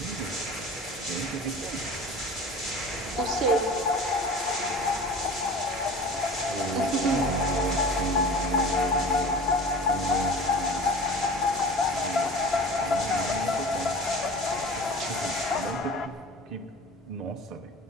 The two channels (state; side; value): normal; both; correlation 0.39